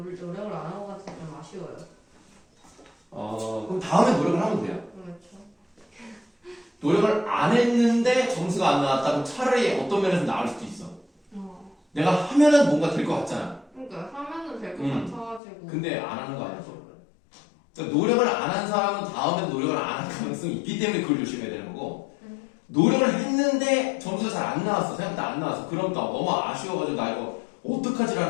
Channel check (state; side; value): drops out; right; at 15.4 s